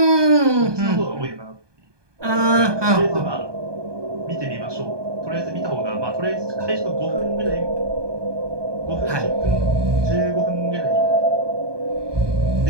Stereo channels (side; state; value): left; late; 1.2 ms